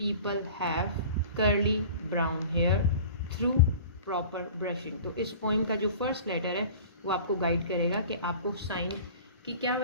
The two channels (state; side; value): inverted; both; correlation -0.41